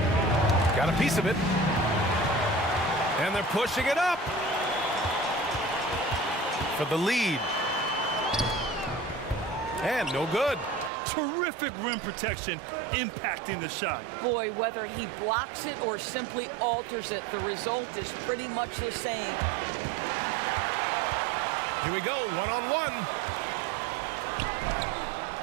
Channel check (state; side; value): drops out; left; at 10.9 s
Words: Got a piece of it. And they're pushing it up for the lead. And no good. Terrific rim protection impacting the shot. Boy, whether he blocks it or simply alters it, the result is pretty much the same. Here we go, one-on-one.